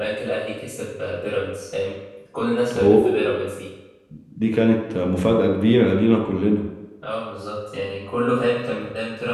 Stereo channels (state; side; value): identical; both; correlation 1.00